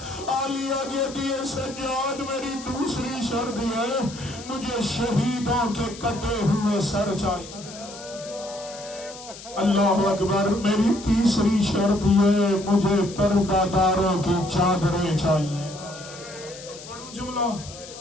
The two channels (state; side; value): noise; left; hiss, 15 dB below the sound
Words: عالیہ کہتی ہے سجاد میری دوسری شرط ہے مجھے شہیدوں کے کٹے ہوئے سر چاہیے. اللہ اکبر. میری تیسری شرط یہ مجھے پردہ داروں کی چادریں چاہیے. پڑھوں جملہ